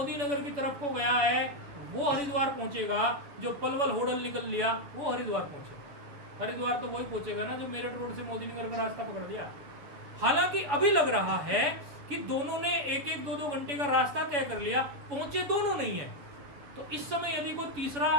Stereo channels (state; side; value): late; left; 7.0 ms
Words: नगर की तरफ को गया है वो हरिद्वार पहुंचेगा, जो पलवल होडल निकल लिया वो हरिद्वार पहुंचेगा। हरिद्वार तो वही पहुंचेगा ना जो मेरठ रोड से मोदी नगर का रास्ता पकड़ लिया। हालांकि अभी लग रहा है कि दोनों ने 1-1, 2-2 घंटे का रास्ता तय कर लिया, पहुंचे दोनों नहीं है। तो इस समय यदि कोई तीसरा